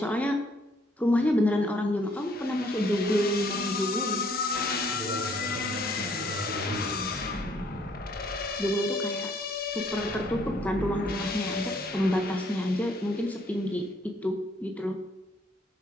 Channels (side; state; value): both; normal; correlation 0.65